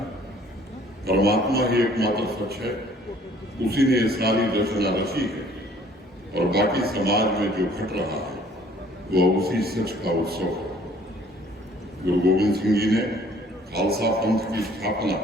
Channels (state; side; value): normal; both; correlation 0.57